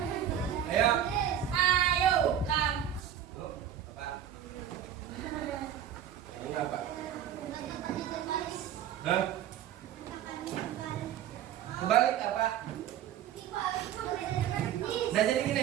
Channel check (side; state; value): left; quieter; 10.1 dB